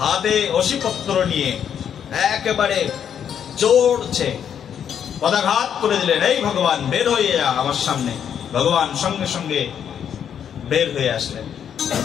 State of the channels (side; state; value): right; quieter; 8.6 dB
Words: অসিপত্র নিয়ে একেবারে চড়ছে, পদাঘাত করে দিলেন, এই ভগবান বের হয়ে যা আমার সামনে। ভগবান সঙ্গে সঙ্গে বের হয়ে আসলেন।